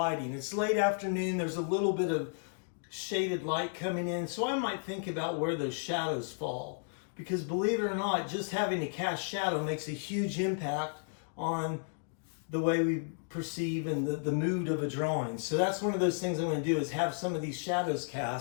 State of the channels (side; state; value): right; silent; digital silence